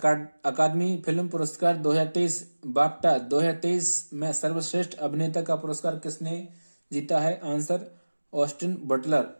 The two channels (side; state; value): both; inverted; correlation -1.00